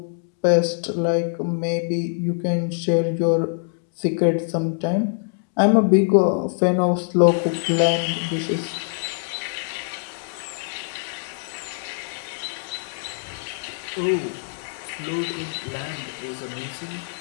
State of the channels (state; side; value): silent; right; digital silence